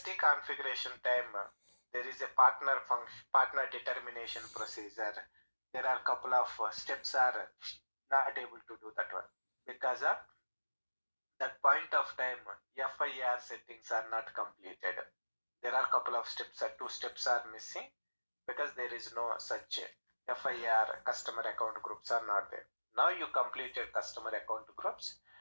configuration time, there is a partner determination procedure. There are a couple of steps are not able to do that one because of that point of time FIR settings are not completed. There are a couple of steps, 2 steps are missing because there is no such FIR customer account groups are not there. Now you completed customer account groups,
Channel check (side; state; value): both; inverted; correlation -1.00